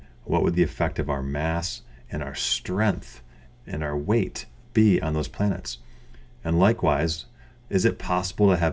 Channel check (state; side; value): identical; both; correlation 1.00